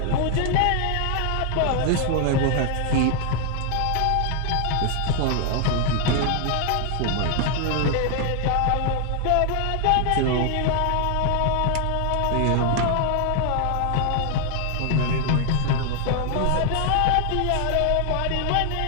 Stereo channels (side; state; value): both; different; correlation 0.00